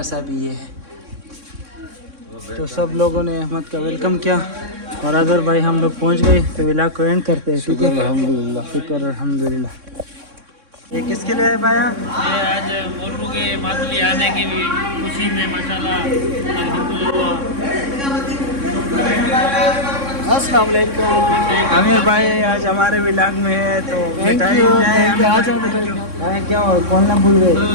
से अभी ये है। तो सब लोगों ने अहमद का वेलकम किया और अदर भाई हम लोग पहुंच गए, तो व्लॉग को एंड करते हैं। शुक्र अल्हम्दुलिल्लाह, शुक्र अल्हम्दुलिल्लाह। ये किसके लिए है भाया? ये आज मोटू के मातली आने की भी खुशी में माशाल्लाह अल्हम्दुलिल्लाह। अस्सलाम वालेकुम। आमिर भाई आज हमारे व्लॉग में है, तो मिठाई क्या हो, बोलना भूल गए।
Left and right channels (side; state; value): left; late; 3.6 ms